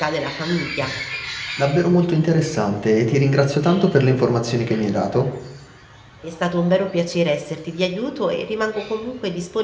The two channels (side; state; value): both; identical; correlation 1.00